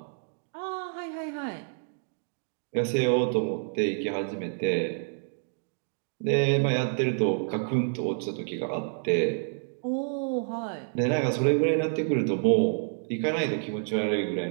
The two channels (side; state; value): left; silent; digital silence